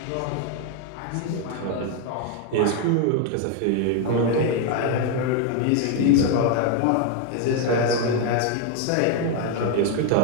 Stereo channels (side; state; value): both; different; correlation 0.01